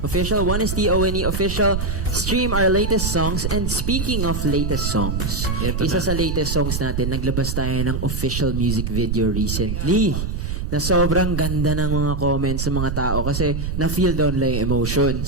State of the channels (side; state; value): right; noise; rumble, 2 dB below the sound